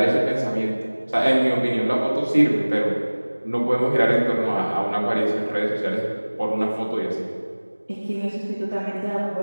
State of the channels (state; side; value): inverted; both; correlation -1.00